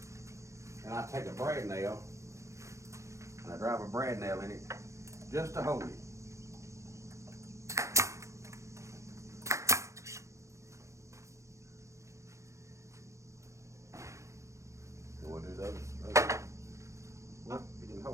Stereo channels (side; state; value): left; late; 0.15 ms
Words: And I take a brad nail and I drive a brad nail in it just to hold it. And we'll do those. Well, it didn't